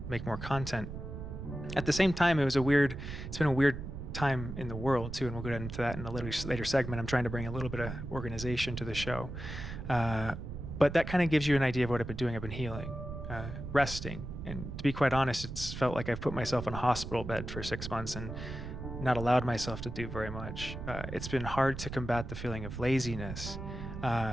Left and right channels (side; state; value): right; noise; rumble, 8 dB below the sound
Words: make more content. At the same time, it's been a weird time in the world too, and we'll get into that in a later segment. I'm trying to bring a little bit of organization to the show. But that kind of gives you an idea of what I've been doing. I've been healing, resting, and to be quite honest, it's felt like I've put myself in a hospital bed for 6 months and not allowed myself to do very much. It's been hard to combat the feeling of laziness,